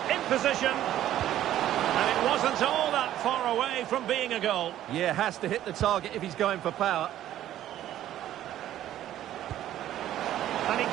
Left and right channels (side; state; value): left; quieter; 12.5 dB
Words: In position. And it wasn't all that far away from being a goal. Yeah, has to hit the target if he's going for power. And he